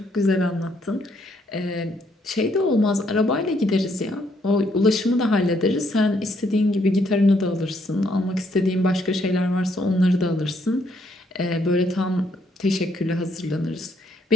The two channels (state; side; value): normal; both; correlation 0.71